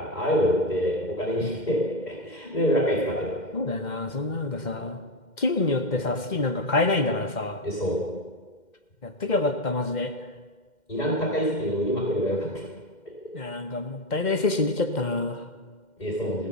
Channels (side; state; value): right; late; 2.1 ms